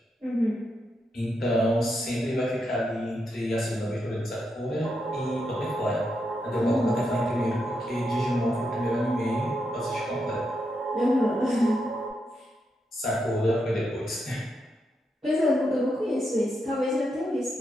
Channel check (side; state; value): both; normal; correlation 0.83